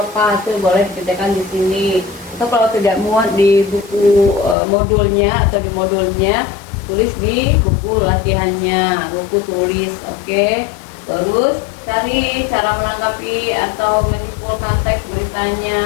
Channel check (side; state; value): right; drops out; at 4.5 s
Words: Itu boleh dikerjakan di sini. Atau kalau tidak muat di buku modulnya atau di modulnya, tulis di buku latihannya, buku tulis. Oke. Terus cari cara menanggapi atau menyimpulkan teks